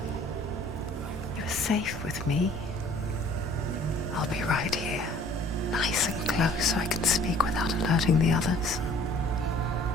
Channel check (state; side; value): normal; both; correlation 0.53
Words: You're safe with me. I'll be right here, nice and close so I can speak without alerting the others.